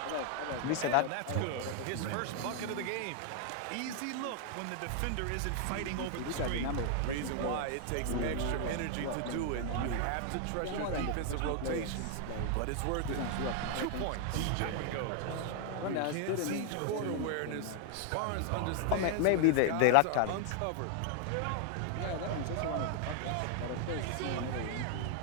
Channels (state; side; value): different; both; correlation 0.00